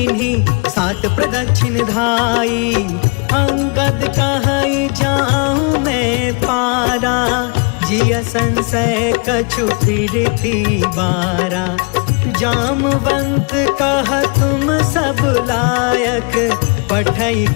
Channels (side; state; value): right; quieter; 34.1 dB